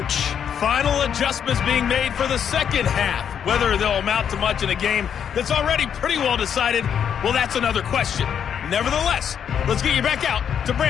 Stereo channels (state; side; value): quieter; right; 8.2 dB